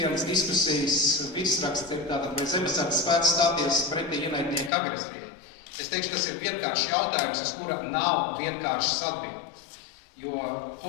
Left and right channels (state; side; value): drops out; right; at 4.7 s